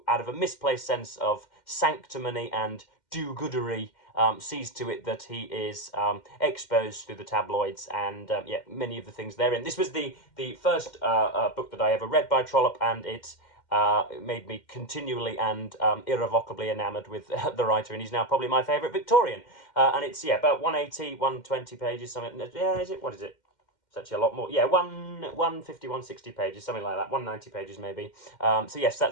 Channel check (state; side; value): late; right; 2.1 ms